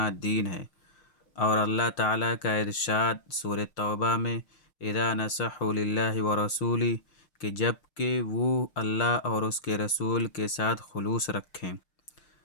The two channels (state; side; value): late; right; 6.5 ms